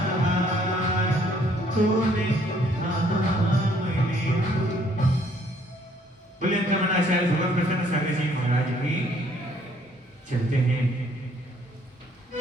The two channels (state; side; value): normal; both; correlation 0.64